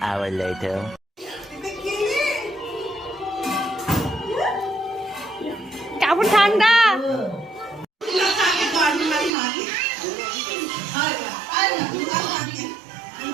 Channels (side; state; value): left; drops out; at 9.3 s